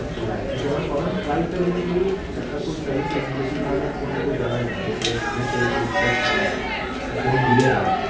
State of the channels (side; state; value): both; identical; correlation 1.00